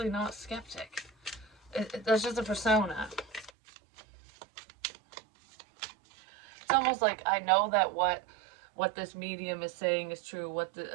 not skeptic. That's just a persona. It's almost like I know that what this medium is saying is true, what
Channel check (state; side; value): drops out; left; at 3.5 s